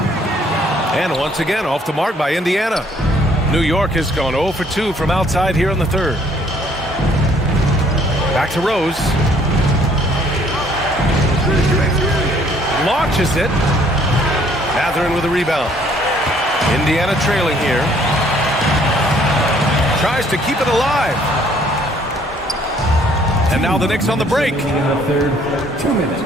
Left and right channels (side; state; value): both; normal; correlation 0.62